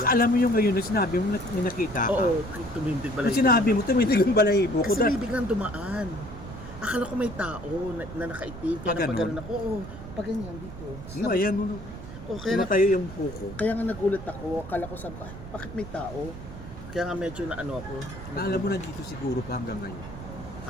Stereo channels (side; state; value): right; noise; rumble, 12 dB below the sound